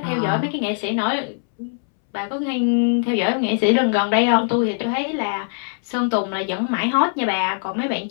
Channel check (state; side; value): silent; right; 64 dB below the other